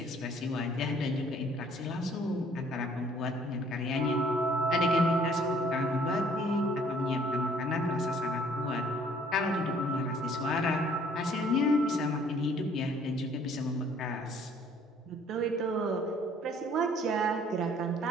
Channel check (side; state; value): both; normal; correlation 0.59